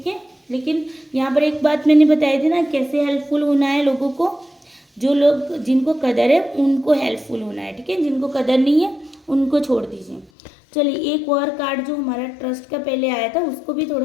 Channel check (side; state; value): right; drops out; at 10.3 s